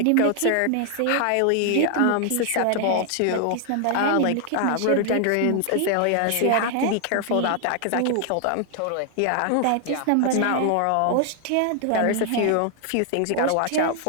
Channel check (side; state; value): both; different; correlation 0.00